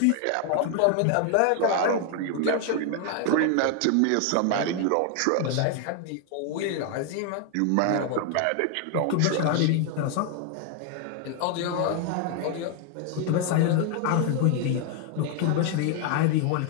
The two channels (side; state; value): both; different; correlation 0.00